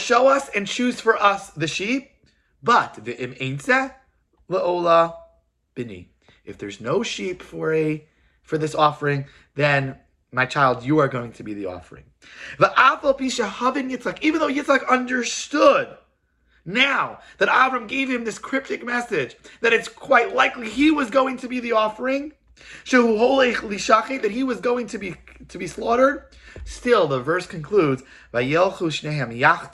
us and choose for us the sheep, but v'im eintzeh le'ola bini. If there's no sheep for this offering, then my child, you are going to be the offering. Even though Yitzchak understood now that Avram gave him this cryptic message, that it's quite likely he was going to be the offering, that he was going to be slaughtered, still the verse concludes, Vayelchu shnehem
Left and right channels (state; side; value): identical; both; correlation 1.00